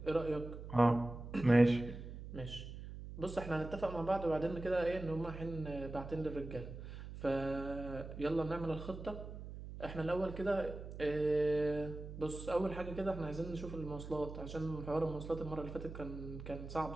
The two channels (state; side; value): noise; right; hum, 10 dB below the sound